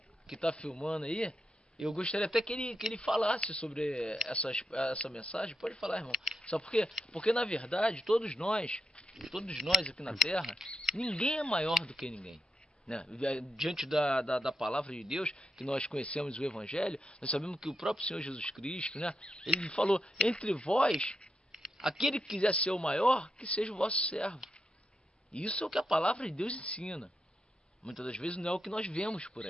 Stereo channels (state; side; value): normal; both; correlation 0.85